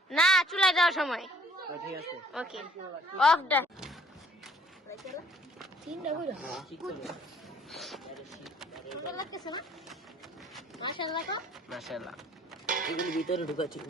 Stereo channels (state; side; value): normal; both; correlation 0.58